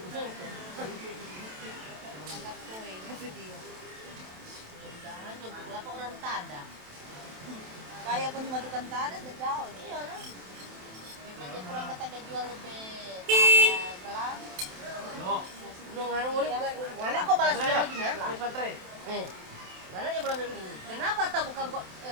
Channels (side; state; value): left; late; 27 ms